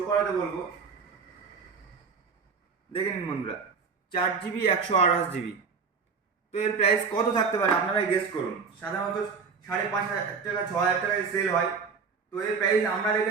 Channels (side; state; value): left; quieter; 5.4 dB